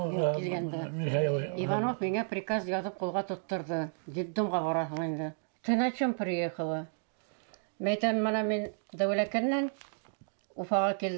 Иванов миңа приказ язып кулга тоттырды. Детдомга барасың инде. Ты на чем приехала? Мәйтәм, мана мин Дәүләкәннән Уфага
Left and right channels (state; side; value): silent; left; digital silence